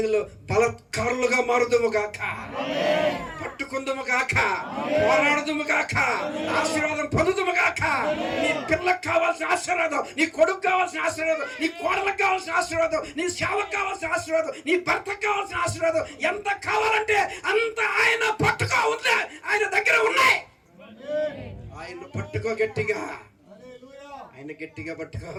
బలత్కారులుగా మారుదుము గాక, పట్టుకుందుము గాక, పోరాడుదుము గాక, ఆశీర్వాదం పొందుదుము గాక. నీ పిల్లకు కావాల్సిన ఆశీర్వాదం, నీ కొడుకు కావాల్సిన ఆశీర్వాదం, నీ కోడలకు కావాల్సిన ఆశీర్వాదం, నీ సేవకు కావాల్సిన ఆశీర్వాదం, నీ భర్తకు కావాల్సిన ఆశీర్వాదం ఎంత కావాలంటే అంత ఆయన పట్టుకో ఉంది. ఆయన దగ్గర ఉన్నాయి. ఆయన పట్టుకో గట్టిగా, ఆయన గట్టిగా పట్టుకో.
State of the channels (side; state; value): both; identical; correlation 1.00